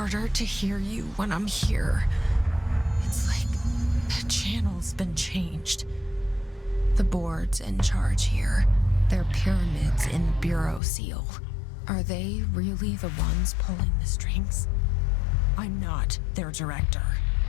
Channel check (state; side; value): drops out; right; at 10.8 s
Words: to hear you when I'm here. It's like the channel's been changed. The board's in charge here. They're pyramids in the Bureau seal. Are they really the ones pulling the strings? I'm not their director.